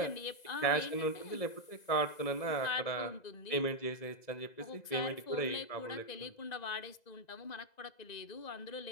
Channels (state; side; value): late; right; 2.0 ms